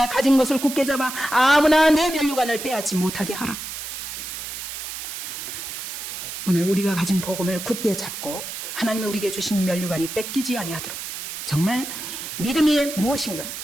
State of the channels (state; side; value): noise; right; hiss, 7 dB below the sound